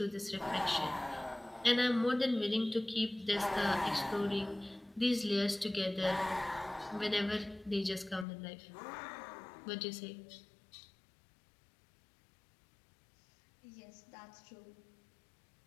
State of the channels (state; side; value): drops out; right; at 8.2 s